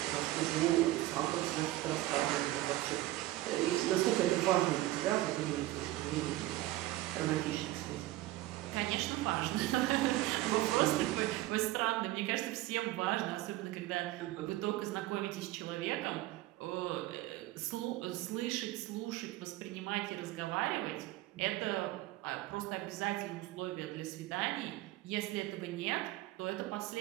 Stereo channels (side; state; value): left; quieter; 16.8 dB